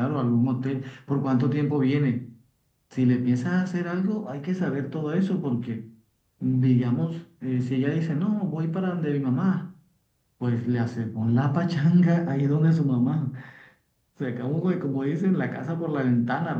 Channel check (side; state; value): both; identical; correlation 1.00